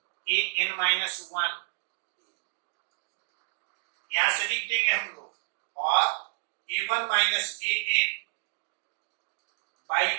an minus 1, यहां से लिख देंगे हम लोग, और a1 माइनस an बाई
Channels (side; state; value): left; silent; digital silence